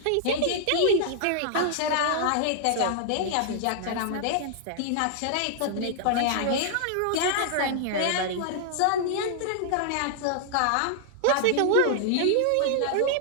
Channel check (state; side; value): different; both; correlation -0.01